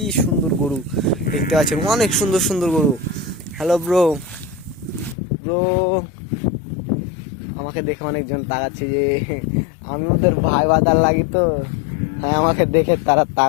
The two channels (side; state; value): right; drops out; at 5.2 s